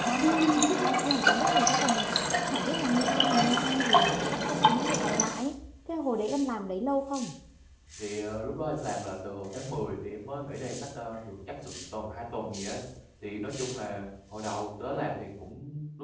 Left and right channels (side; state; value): both; identical; correlation 1.00